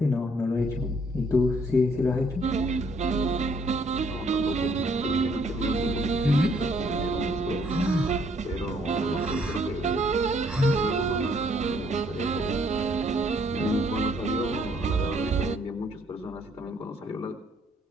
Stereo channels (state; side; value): normal; both; correlation 0.66